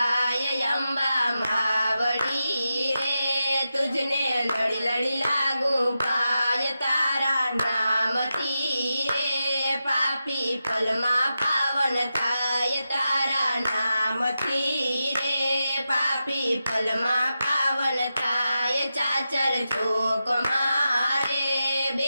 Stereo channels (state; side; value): inverted; both; correlation -0.90